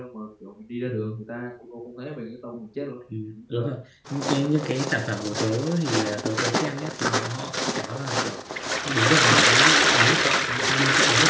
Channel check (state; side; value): identical; both; correlation 1.00